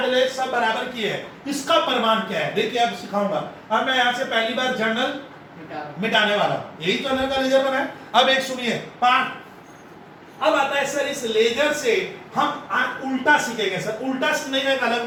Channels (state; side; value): identical; both; correlation 1.00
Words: लेस सब बराबर किए हैं। इसका प्रमाण क्या है? देखिए अब सिखाऊंगा। अब मैं यहाँ से पहली बार जर्नल मिटाने वाला हूं। यही तो जनरल का लेजर बना है। अब एक सुनिए पार्ट, अब आता है सर इस लेजर से हम आज उल्टा सीखेंगे। सर उल्टा सीखने का एक अलग